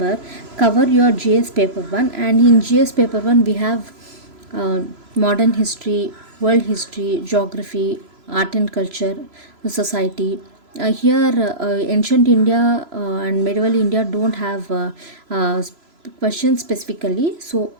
cover your GS paper 1. And in GS paper 1 we have modern history, world history, geography, art and culture, society. Here ancient India and medieval India don't have questions specifically, so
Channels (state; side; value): late; left; 3.0 ms